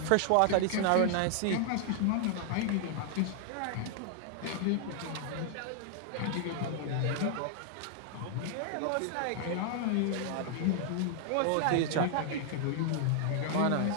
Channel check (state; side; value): different; both; correlation 0.00